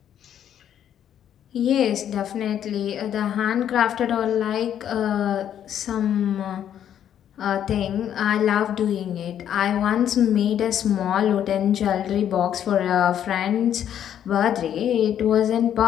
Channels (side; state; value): right; quieter; 9.9 dB